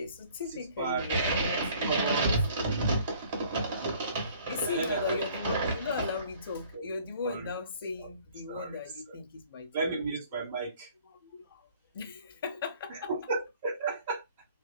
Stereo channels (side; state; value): both; inverted; correlation -0.55